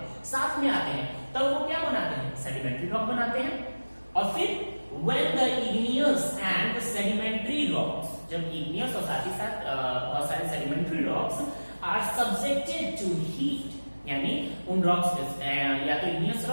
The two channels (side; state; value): both; inverted; correlation -1.00